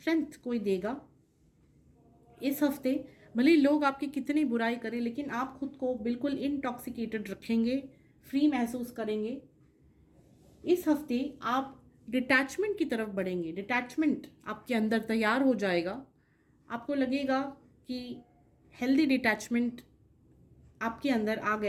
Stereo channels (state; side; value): identical; both; correlation 1.00